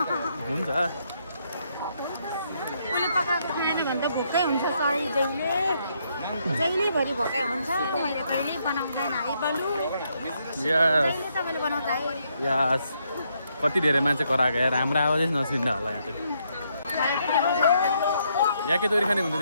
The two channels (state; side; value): inverted; both; correlation -0.75